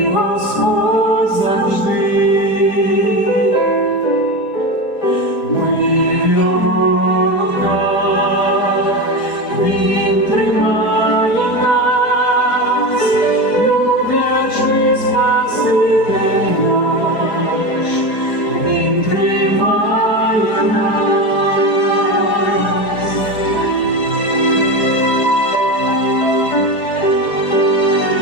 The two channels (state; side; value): late; right; 4.5 ms